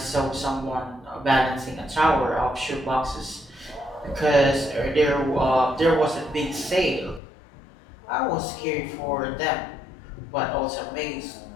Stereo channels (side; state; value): right; drops out; at 7.2 s